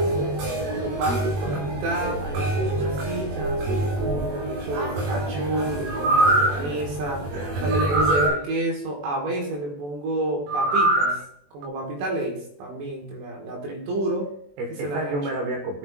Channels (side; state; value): left; late; 21 ms